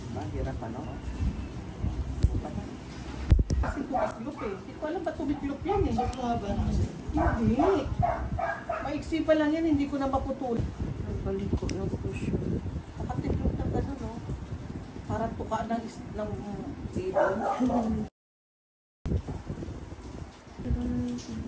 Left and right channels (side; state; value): both; identical; correlation 1.00